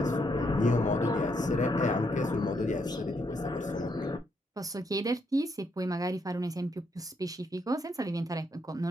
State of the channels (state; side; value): normal; both; correlation 0.76